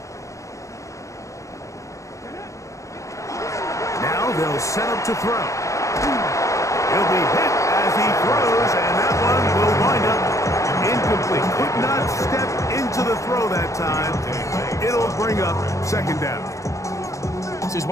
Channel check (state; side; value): late; right; 0.15 ms